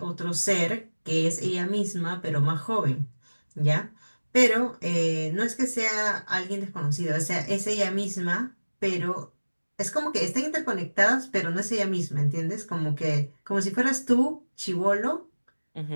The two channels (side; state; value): both; inverted; correlation -1.00